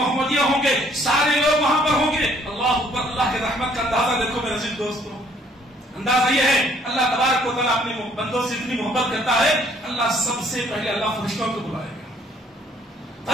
ہوں گے، سارے لوگ وہاں پر ہوں گے۔ اللہ اکبر، اللہ کے رحمت کا اندازہ دیکھو میرے عزیز دوستو۔ اندازہ یہ ہے اللہ تبارک و تعالیٰ اپنے بندوں سے اتنی محبت کرتا ہے، اللہ سب سے پہلے اللہ فرشتوں کو بلائے گا،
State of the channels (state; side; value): normal; both; correlation 0.62